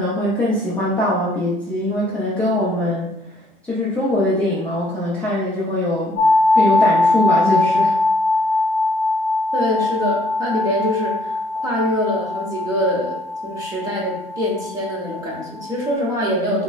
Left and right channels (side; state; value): both; normal; correlation 0.62